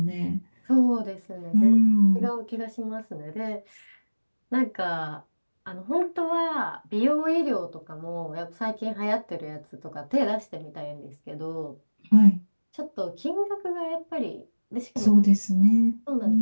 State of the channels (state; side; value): inverted; both; correlation -1.00